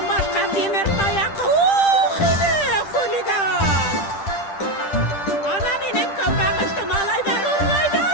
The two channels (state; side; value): late; right; 10 ms